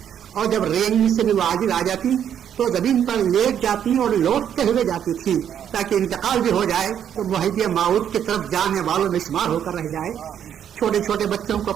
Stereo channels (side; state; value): left; quieter; 9.2 dB